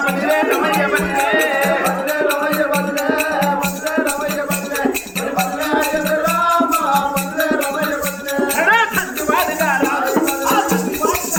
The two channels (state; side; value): identical; both; correlation 1.00